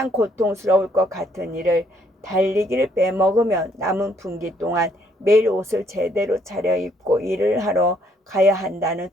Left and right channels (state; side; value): normal; both; correlation 0.68